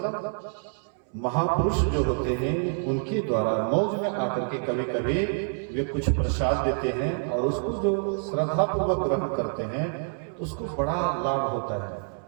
महापुरुष जो होते हैं उनके द्वारा मौज में आकर के कभी कभी वे कुछ प्रसाद देते हैं, और उसको जो श्रद्धा पूर्वक ग्रहण करते हैं तो उसको बड़ा लाभ होता है।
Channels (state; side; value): silent; left; 60 dB below the other